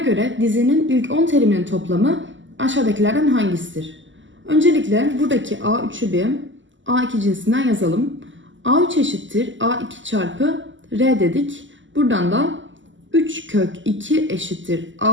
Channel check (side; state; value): left; late; 0.55 ms